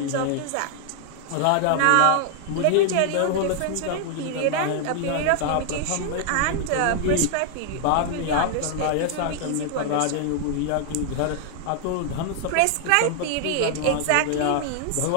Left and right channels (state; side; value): different; both; correlation 0.00